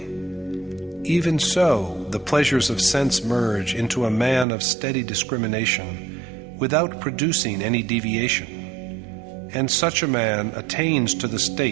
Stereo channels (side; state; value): left; drops out; at 4.5 s